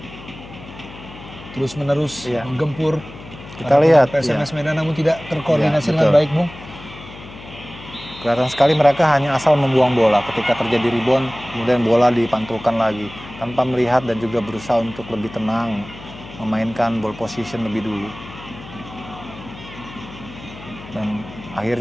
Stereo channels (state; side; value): noise; left; hum, 16 dB below the sound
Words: Terus menerus menggempur. Kita lihat PSMS Medan namun tidak terkoordinasi dengan baik, Bung. Kelihatan sekali mereka hanya asal membuang bola. Ketika terjadi rebound, kemudian bola dipantulkan lagi tanpa melihat dan juga berusaha untuk lebih tenang, memainkan ball position lebih dulu. Dan